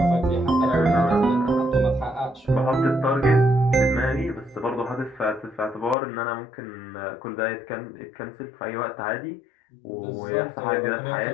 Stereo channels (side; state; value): right; drops out; at 6.0 s